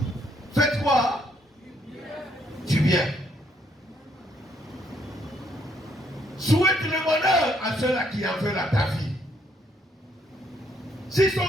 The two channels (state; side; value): normal; both; correlation 0.70